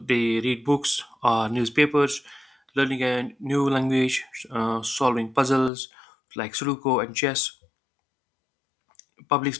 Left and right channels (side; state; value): right; drops out; at 5.7 s